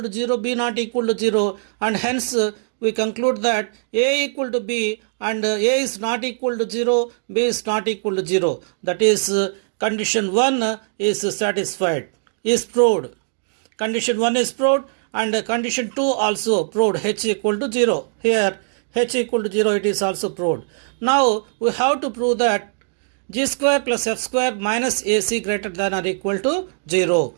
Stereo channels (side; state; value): left; silent; digital silence